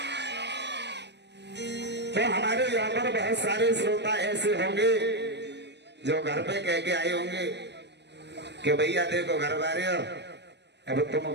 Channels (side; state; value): left; late; 0.50 ms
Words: तो हमारे यहाँ पर बहुत सारे श्रोता ऐसे होंगे जो घर पे कह के आए होंगे कि भैया देखो घर वाले हो, अब तुम